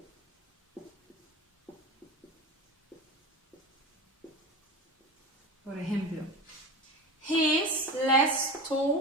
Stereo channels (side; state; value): both; normal; correlation 0.27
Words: Por ejemplo, he is less